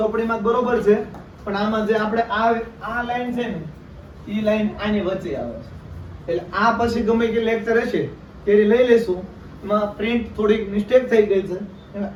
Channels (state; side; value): identical; both; correlation 1.00